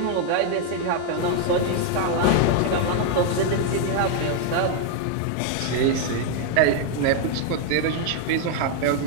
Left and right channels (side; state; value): both; different; correlation 0.00